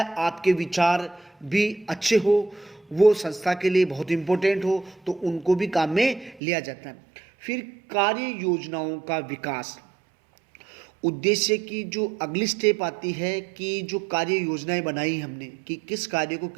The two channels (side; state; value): left; drops out; at 6.4 s